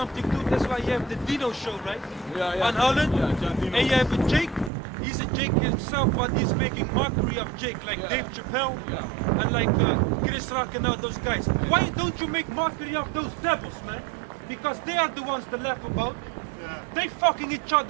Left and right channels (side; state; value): left; drops out; at 4.7 s